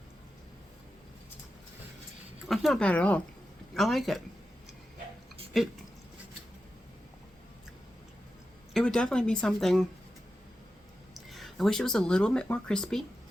That's not bad at all. I like it. It would definitely be something. I wish it was a little bit more crispy.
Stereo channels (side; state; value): both; normal; correlation 0.91